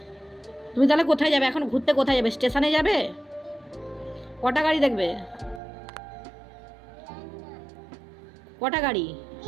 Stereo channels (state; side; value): drops out; left; at 5.6 s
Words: তুমি তাহলে কোথায় যাবে এখন? ঘুরতে কোথায় যাবে? স্টেশনে যাবে? কটা গাড়ি দেখবে? কটা গাড়ি?